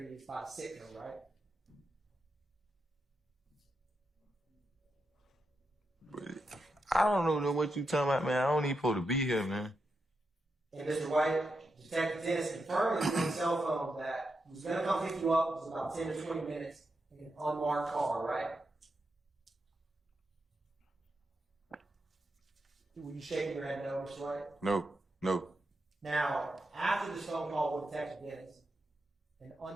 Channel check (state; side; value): normal; both; correlation 0.86